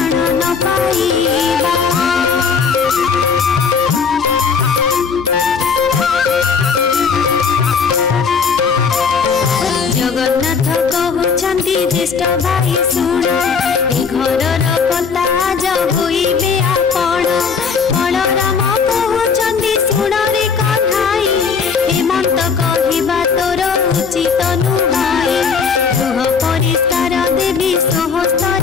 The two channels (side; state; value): right; quieter; 5.8 dB